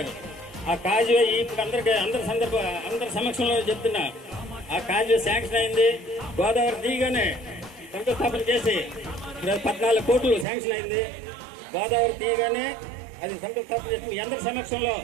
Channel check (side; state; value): left; drops out; at 10.5 s